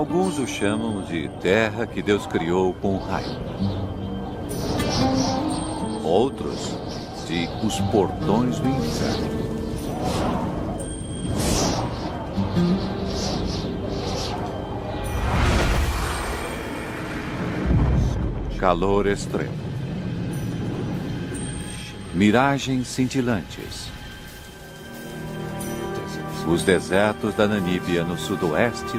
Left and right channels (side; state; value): both; identical; correlation 1.00